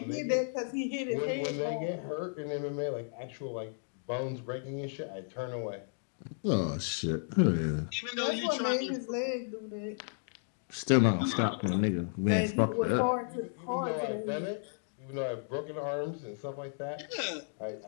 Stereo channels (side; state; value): right; silent; digital silence